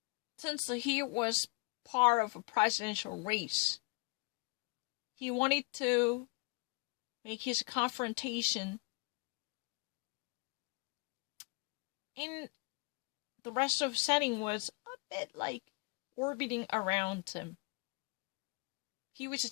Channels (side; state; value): right; quieter; 29.3 dB